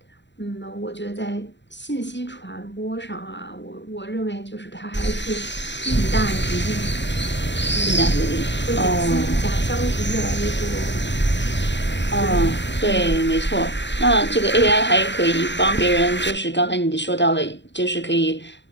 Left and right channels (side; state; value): right; late; 0.52 ms